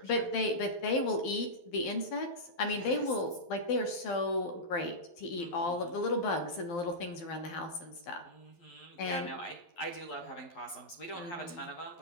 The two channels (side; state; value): right; late; 12 ms